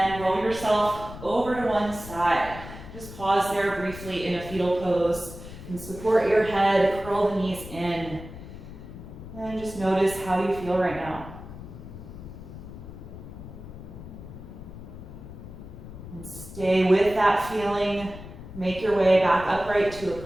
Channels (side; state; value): left; noise; rumble, 13 dB below the sound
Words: roll yourself over to one side. Just pause there briefly in a fetal pose and support your head, curl the knees in. And just notice how you feel right now. And stay with that feeling. Make your way back upright to a